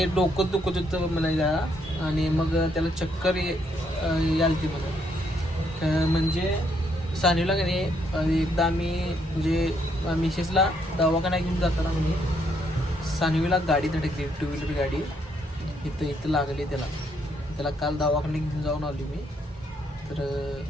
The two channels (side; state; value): both; normal; correlation 0.73